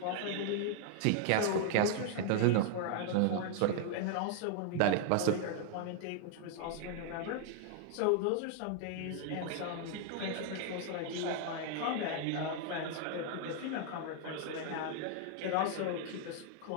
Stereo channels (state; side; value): different; both; correlation 0.00